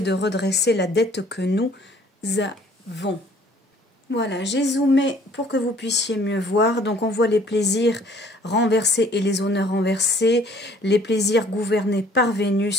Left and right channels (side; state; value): both; normal; correlation 0.57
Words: redresser la dette que nous avons. Voilà, j'ai zoomé pour que vous puissiez mieux voir. Donc on voit les plaisirs renversés et les honneurs renversés. Les plaisirs gouvernés par